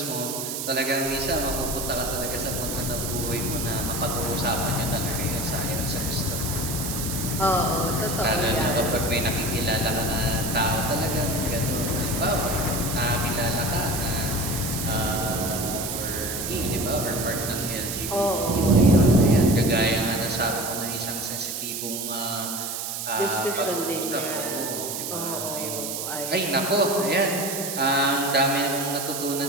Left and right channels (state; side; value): noise; right; hiss, 4 dB below the sound